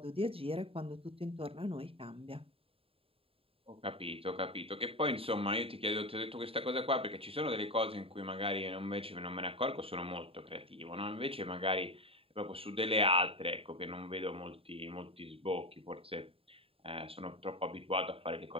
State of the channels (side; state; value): left; late; 0.27 ms